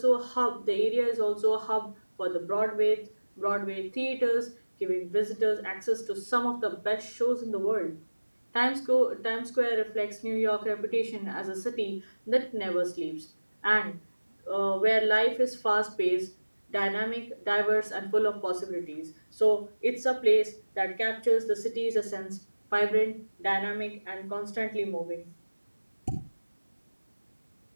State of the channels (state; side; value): inverted; both; correlation -1.00